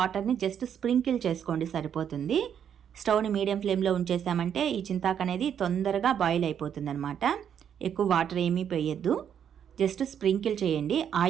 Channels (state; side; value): quieter; left; 8.7 dB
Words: జస్ట్ స్ప్రింకిల్ చేసుకోండి, సరిపోతుంది. స్టవ్ని మీడియం ఫ్లేమ్లో ఉంచేసామంటే ఈ చింతాకు అనేది తొందరగా బాయిల్ అయిపోతుంది అనమాట. ఎక్కువ వాటర్ ఏమీ వేయద్దు, జస్ట్ స్ప్రింకిల్ చేయండి.